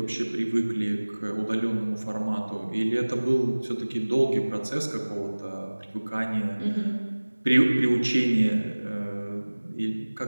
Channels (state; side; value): inverted; both; correlation -1.00